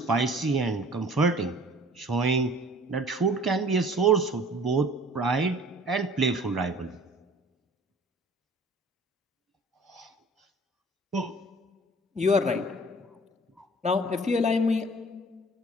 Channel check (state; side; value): normal; both; correlation 0.49